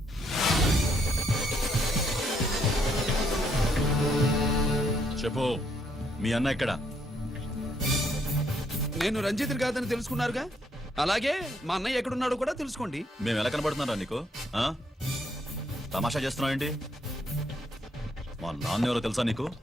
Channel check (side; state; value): both; normal; correlation 0.72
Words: చెప్పు, మీ అన్న ఎక్కడ? నేను రంజిత్ కాదని తెలుసుకున్నారుగా, అలాగే మా అన్నయ్య ఎక్కడున్నాడో కూడా తెలుసుకోండి. మేము ఎలా కనబడుతున్నారా నీకు? తమాషా చేస్తున్నావు ఏంటి? మా నాన్న ఎవరో తెలుసా నీకు?